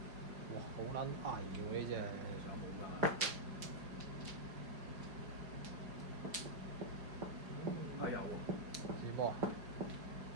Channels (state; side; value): late; left; 5.0 ms